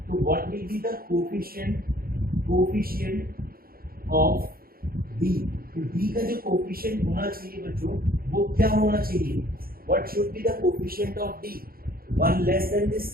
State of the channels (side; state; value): left; late; 0.43 ms